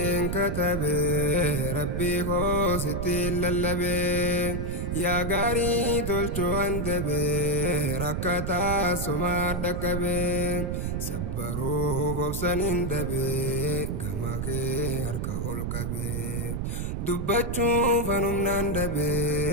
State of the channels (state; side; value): noise; right; rumble, 2 dB below the sound